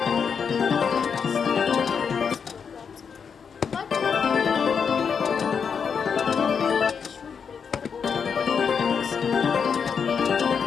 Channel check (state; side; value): quieter; right; 6.4 dB